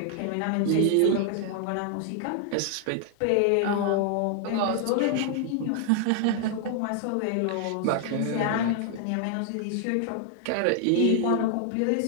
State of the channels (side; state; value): both; different; correlation 0.00